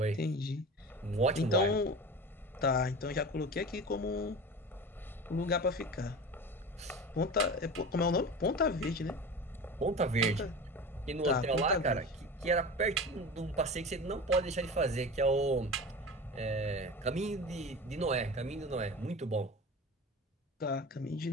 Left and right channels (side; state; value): both; normal; correlation 0.32